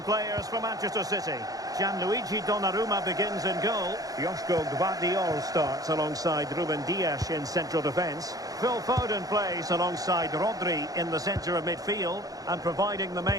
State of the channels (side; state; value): left; late; 0.18 ms